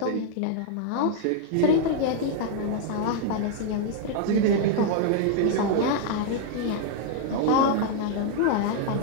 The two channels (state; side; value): different; both; correlation 0.00